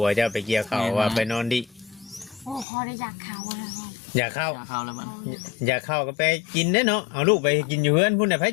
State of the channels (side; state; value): right; drops out; at 2.7 s